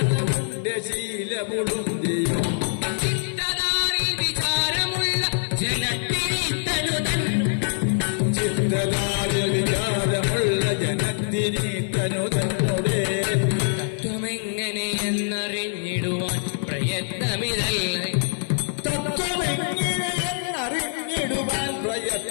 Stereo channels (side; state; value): right; silent; digital silence